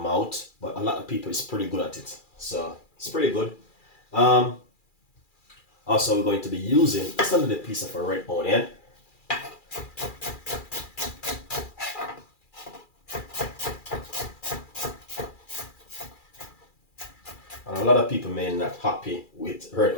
But a lot of people is pretty good at it. So it's pretty good. Also, we're going to be using just a little piece of a red onion. And a lot of people may not happy with red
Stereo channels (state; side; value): late; right; 2.4 ms